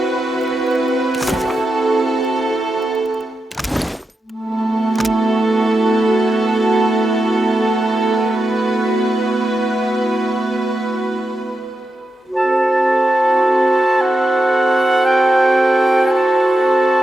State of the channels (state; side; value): normal; both; correlation 0.88